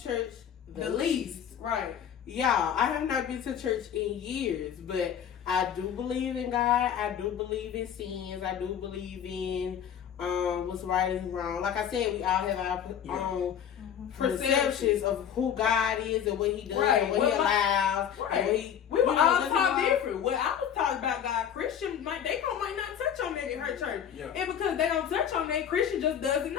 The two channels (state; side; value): quieter; right; 8.9 dB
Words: church the least. Right. Y'all, I have not been to church in years, but I do believe in God. I do believe in sins. I do believe in what's right and wrong. Like I said, we all have our own perceptions of who God is and what He does and what He allows. And what he, we were all taught different. Well, I was taught about God. Christian, might not touch on that in her church. Yeah. And because they don't touch on that, Christian just doesn't